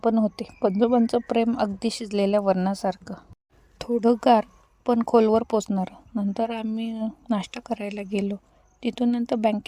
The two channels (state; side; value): identical; both; correlation 1.00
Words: होते. पणजोबांचं प्रेम अगदी शिजलेल्या वरणासारखं. थोडं गार पण खोलवर पोचणारं. नंतर आम्ही नाश्ता करायला गेलो. तिथून नंतर